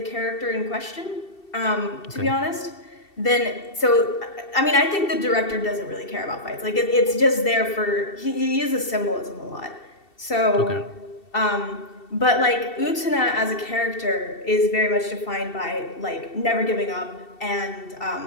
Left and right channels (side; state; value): right; late; 2.7 ms